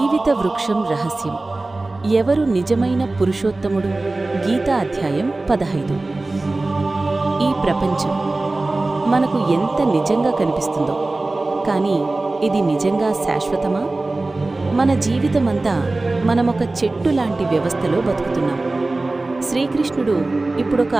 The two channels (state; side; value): quieter; left; 3.1 dB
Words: వృక్షం రహస్యం. ఎవరు నిజమైన పురుషోత్తముడు? గీతా అధ్యాయం 15. ఈ ప్రపంచం మనకు ఎంత నిజంగా కనిపిస్తుందో, కానీ ఇది నిజంగా శాశ్వతమా? మన జీవితమంతా మనమొక చెట్టు లాంటి వ్యవస్థలో బతుకుతున్నాం. శ్రీకృష్ణుడు ఇప్పుడొక